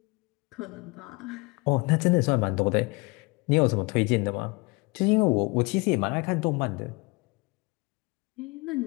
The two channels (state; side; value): quieter; right; 26.8 dB